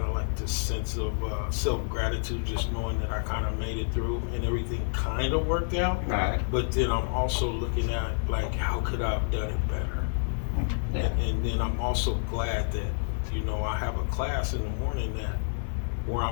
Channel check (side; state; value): right; silent; digital silence